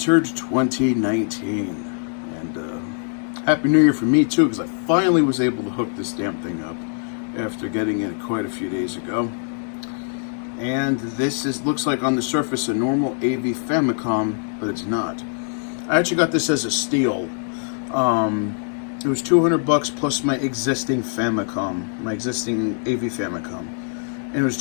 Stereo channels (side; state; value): right; silent; digital silence